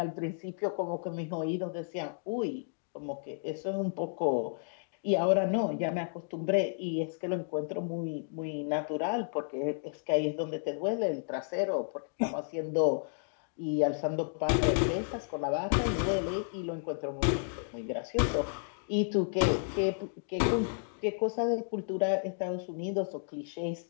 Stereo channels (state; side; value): silent; right; digital silence